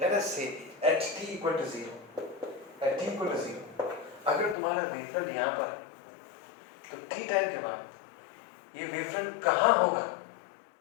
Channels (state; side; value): drops out; right; at 4.5 s